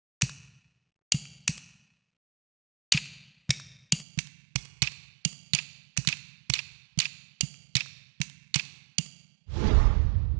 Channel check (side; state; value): left; drops out; at 4.0 s